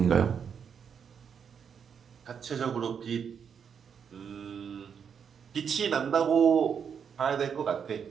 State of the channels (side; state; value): left; quieter; 7.2 dB